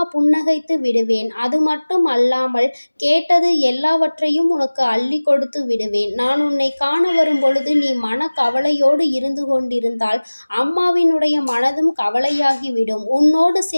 புன்னகைத்து விடுவேன். அது மட்டும் அல்லாமல் கேட்டது எல்லாவற்றையும் உனக்கு அள்ளி கொடுத்து விடுவேன். நான் உன்னை காண வரும் பொழுது நீ மன கவலையோடு இருந்து கொண்டிருந்தால் அம்மாவினுடைய மனதும் கவலையாகிவிடும். உன்னோடு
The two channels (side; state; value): both; inverted; correlation -1.00